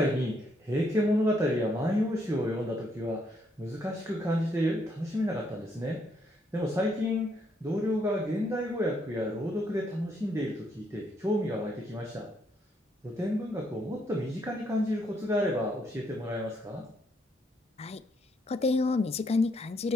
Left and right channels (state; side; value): normal; both; correlation 0.73